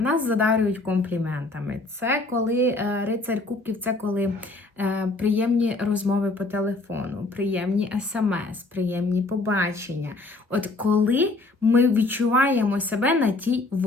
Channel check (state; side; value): quieter; right; 3.1 dB